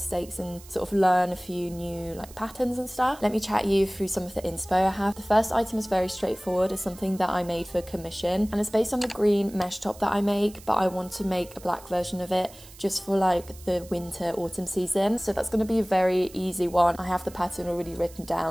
and sort of learn a few new patterns and stuff. Let me chat you through some of the inspo I have. The first item is very straightforward. It's something that I made for commission and it's based on the green mesh top that I make, but I want to make a black version of it just for the winter autumn season. So that's going to be a very easy one. I have the pattern already written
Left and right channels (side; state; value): right; noise; hiss, 20 dB below the sound